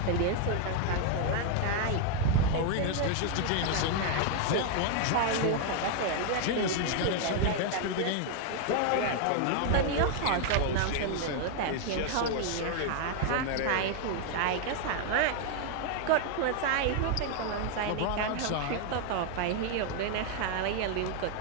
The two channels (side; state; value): both; different; correlation 0.00